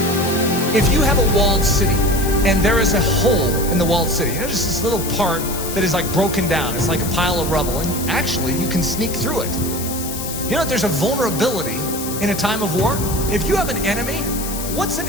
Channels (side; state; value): left; noise; hiss, 7 dB below the sound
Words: If you have a walled city and there is a hole in the walled city, just this little part that is like broken down, it's like a pile of rubble, and actually you can sneak through it. There's a vulnerability in a time of war. If you have an enemy, what's an